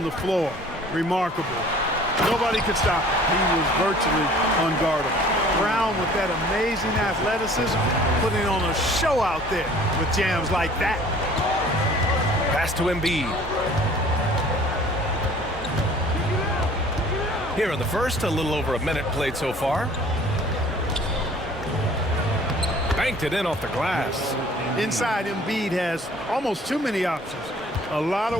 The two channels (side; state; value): both; normal; correlation 0.51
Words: the floor. Remarkable. Nobody could stop him. He was virtually unguardable. Brown with that amazing athleticism, putting on a show out there with jams like that. Pass to Embiid. Here in the first, a little over a minute played so far. Banked it in off the glass. Inside, Embiid has almost too many options. A lot